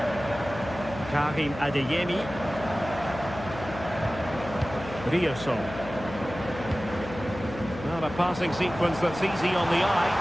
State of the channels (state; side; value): noise; left; hum, 12 dB below the sound